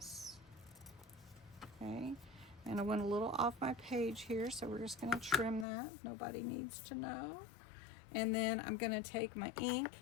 Okay, and I went a little off my page here, so we're just going to trim that. Nobody needs to know. And then I'm going to take my ink,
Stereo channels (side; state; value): right; drops out; at 5.7 s